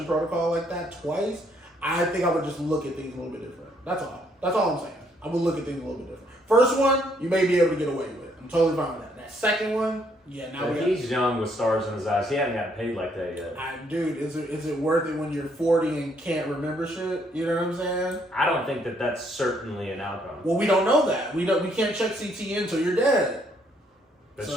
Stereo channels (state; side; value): normal; both; correlation 0.69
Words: protocol like that twice, I think I would just look at things a little bit different. That's all. That's all I'm saying. I would look at things a little bit different. First one, you may be able to get away with it. I'm totally fine with that. That second one, yeah, now he's young with stars in his eyes. He hasn't gotten paid like that yet. Dude, is it worth it when you're 40 and can't remember shit? You know what I'm saying? I don't think that's certainly an outcome. Well, we don't know that. We can't check CTE until you're dead. That's